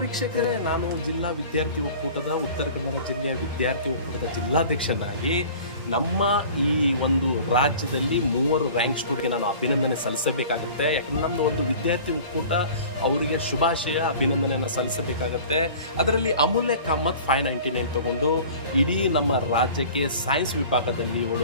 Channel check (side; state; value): both; inverted; correlation -0.43